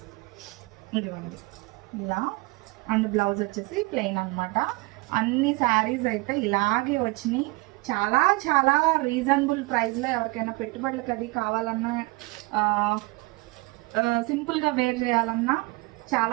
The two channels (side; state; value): left; quieter; 24.6 dB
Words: ఇదిగోండి ఇలా. అండ్ బ్లౌజ్ వచ్చేసి ప్లెయిన్ అనమాట. అన్ని శారీస్ అయితే ఇలాగే వచ్చినాయి. చాలా చాలా రీజనబుల్ ప్రైస్లో ఎవరికైనా పెట్టుబడులకు అది కావాలన్నా, సింపుల్గా వేర్ చేయాలన్నా